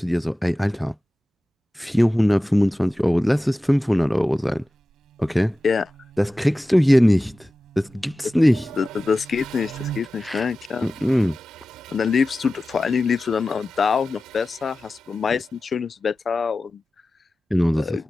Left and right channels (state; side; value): normal; both; correlation 0.95